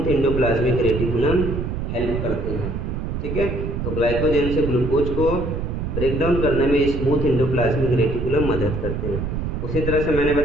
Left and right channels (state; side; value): noise; right; rumble, 3 dB below the sound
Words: एंडोप्लाज्मिक रेटिकुलम हेल्प करते हैं। ठीक है, तो ग्लाइकोजन से ग्लूकोज को ब्रेक डाउन करने में स्मूथ एंडोप्लाज्मिक रेटिकुलम मदद करते हैं। उसी तरह से मैंने